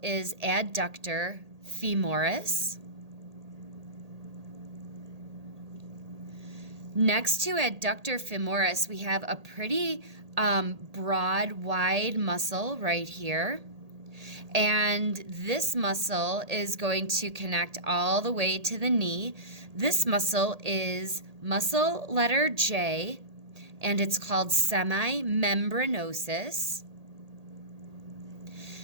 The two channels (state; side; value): late; left; 1.8 ms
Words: is adductor femoris. Next to adductor femoris, we have a pretty broad, wide muscle right here. And this muscle is going to connect all the way to the knee. This muscle is muscle letter J, and it's called semimembranosus.